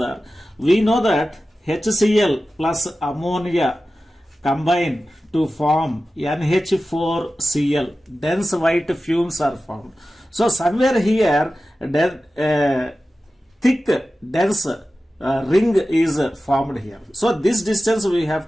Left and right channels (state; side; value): normal; both; correlation 0.94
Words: we know that HCl plus ammonia combine to form NH4Cl. Dense white fumes are formed. So somewhere here, thick dense ring is formed here. So this distance we have